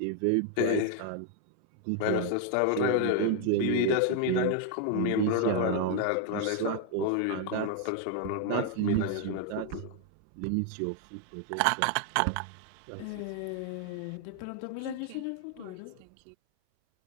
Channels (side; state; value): both; different; correlation 0.00